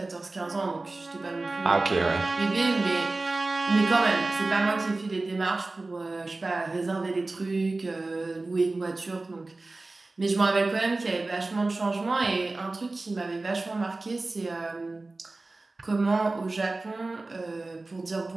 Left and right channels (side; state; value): left; quieter; 3.2 dB